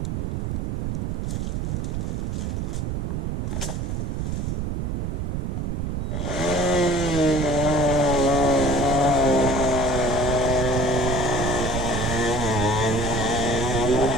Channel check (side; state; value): right; noise; rumble, 1 dB below the sound